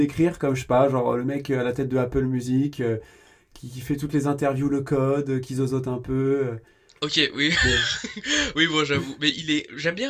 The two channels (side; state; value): both; identical; correlation 1.00